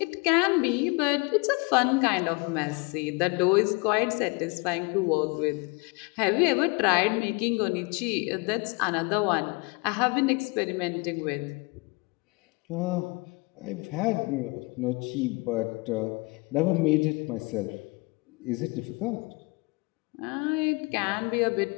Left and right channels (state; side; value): quieter; right; 28.5 dB